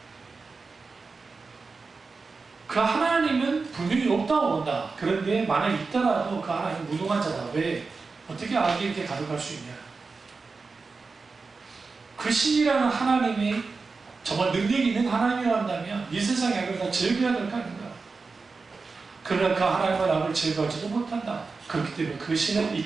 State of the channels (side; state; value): left; quieter; 4.3 dB